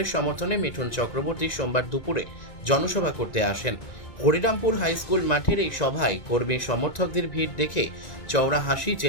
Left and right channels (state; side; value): late; right; 1.9 ms